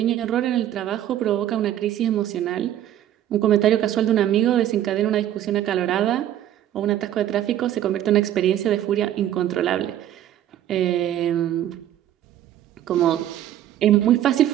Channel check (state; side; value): quieter; left; 11.8 dB